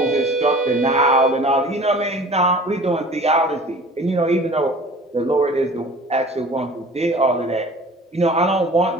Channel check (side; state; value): both; normal; correlation 0.44